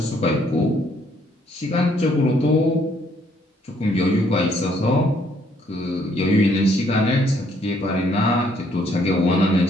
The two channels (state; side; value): normal; both; correlation 0.67